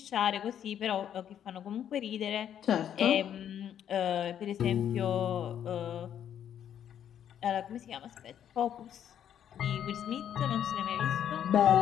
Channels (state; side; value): quieter; right; 9.7 dB